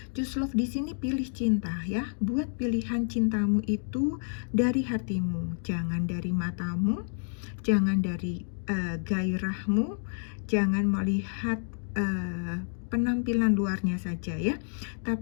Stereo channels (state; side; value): silent; right; digital silence